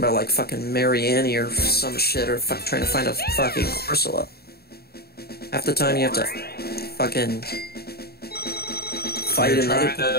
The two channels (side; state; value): right; late; 0.46 ms